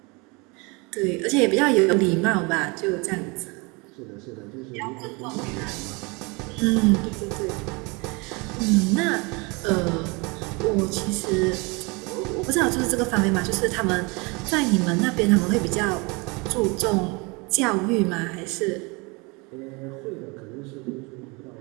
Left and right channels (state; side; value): quieter; left; 28.1 dB